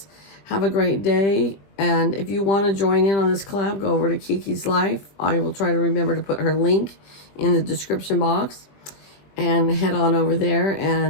have a great day. And if you want to join in on this collab, go over to Kiki's Life. I will try to remember to put her link in the description box. And head on over there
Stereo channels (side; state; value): right; late; 20 ms